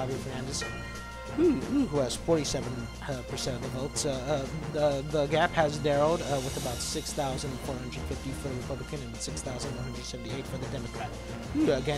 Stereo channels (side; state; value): both; identical; correlation 1.00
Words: Fernandez, who has 47% of the votes. The gap has narrowed with about 6,450 for the Republican and 6,178 for the Democrat.